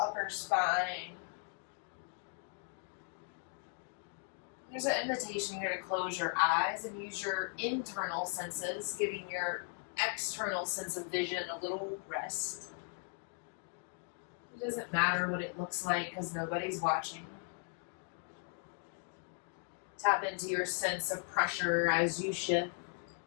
spine. There's an invitation here to close your eyes and use your internal senses, giving your external sense of vision a little rest. It doesn't matter what it looks like because nobody's watching. Tap into your sense of pressure as you shift.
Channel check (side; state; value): right; silent; 53 dB below the other